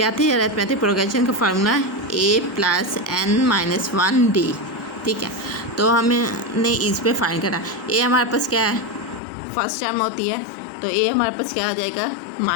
थी अरिथमेटिक प्रोग्रेशन का फार्मूला, A + n-1D। ठीक है, तो हमने इस पे फाइंड करना। A हमारे पास क्या है, फर्स्ट टर्म होती है, तो A हमारे पास क्या आ जाएगा,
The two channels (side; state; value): right; drops out; at 9.2 s